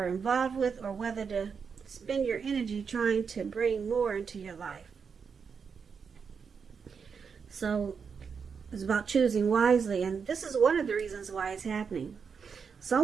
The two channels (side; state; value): left; quieter; 6.1 dB